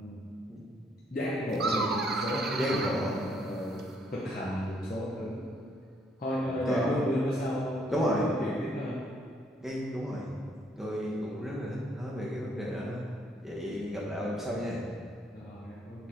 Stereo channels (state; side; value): normal; both; correlation 0.69